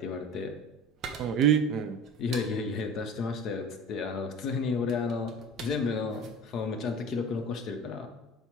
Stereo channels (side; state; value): both; normal; correlation 0.37